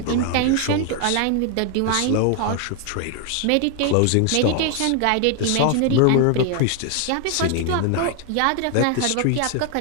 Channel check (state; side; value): different; both; correlation 0.00